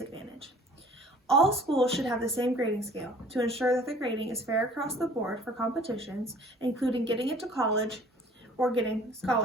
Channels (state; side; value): normal; both; correlation 0.51